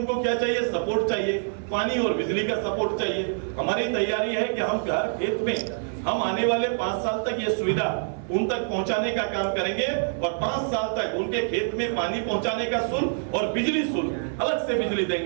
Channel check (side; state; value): left; silent; 59 dB below the other